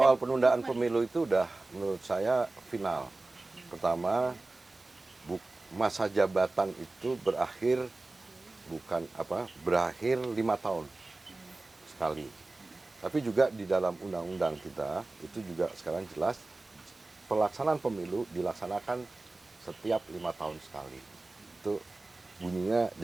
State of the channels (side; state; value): left; quieter; 3.1 dB